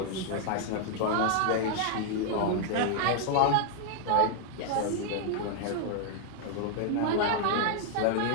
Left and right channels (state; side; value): different; both; correlation 0.00